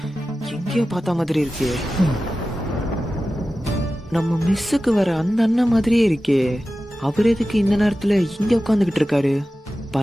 எங்கேயோ பார்த்த மாதிரி இருக்கே. நம்ம மிஸ்ஸுக்கு வர அந்த அண்ணன் மாதிரியே இருக்கே. அவர் எதுக்கு இந்த நேரத்துல இங்க உட்காந்துக்கிட்டு இருக்காரு?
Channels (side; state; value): both; normal; correlation 0.94